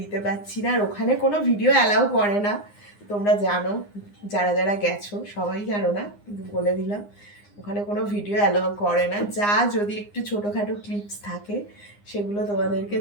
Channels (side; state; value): right; late; 9.8 ms